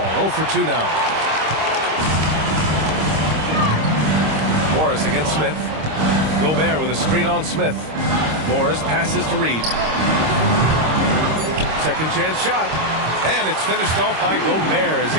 0 for 2 now. Morris against Smith. Gobert with a screen on Smith. Morris passes to Reed. Second chance shot. And it's finished off by Gobert as he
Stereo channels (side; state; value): left; late; 26 ms